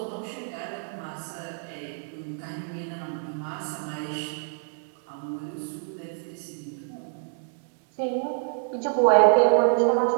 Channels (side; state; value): left; silent; digital silence